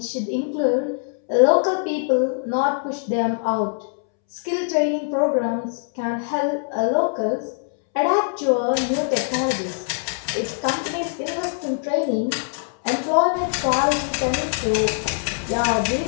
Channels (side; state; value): right; silent; 64 dB below the other